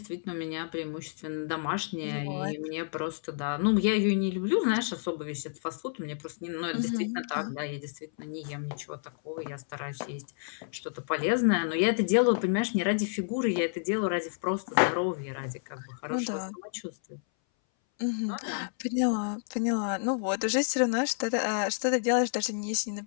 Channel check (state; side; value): silent; right; 58 dB below the other